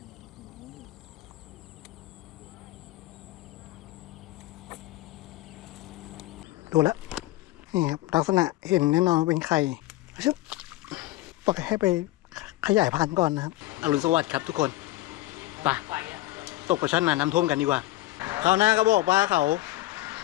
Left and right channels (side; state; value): right; quieter; 17.3 dB